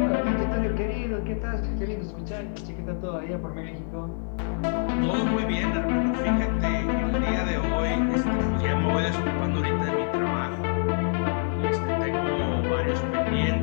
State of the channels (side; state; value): right; silent; 61 dB below the other